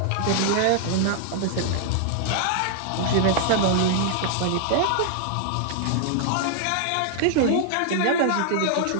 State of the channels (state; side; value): different; both; correlation -0.01